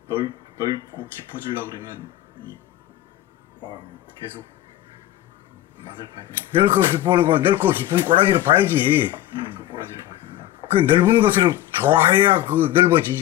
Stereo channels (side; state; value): right; quieter; 13.8 dB